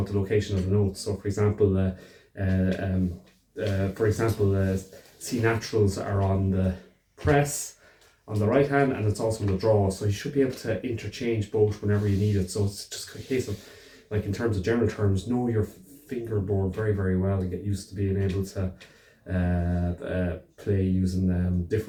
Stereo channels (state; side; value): identical; both; correlation 1.00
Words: the location of the notes. So for example, C naturals are on the press on the right hand, and it's also on the draw. So you should be able to interchange both whenever you need it. So it's just a case of, like, in terms of general terms, know your fingerboard very, very well and get used to being able to play using